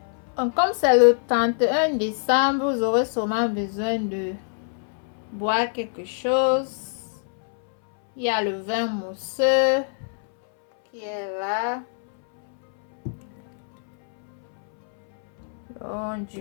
comme c'est le 31 décembre, vous aurez sûrement besoin de boire quelque chose. Il y a le vin mousseux qui est là. Donc,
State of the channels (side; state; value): right; silent; 62 dB below the other